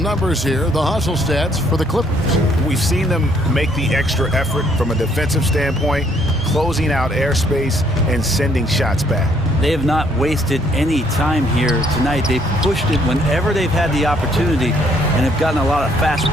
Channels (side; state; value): both; normal; correlation 0.66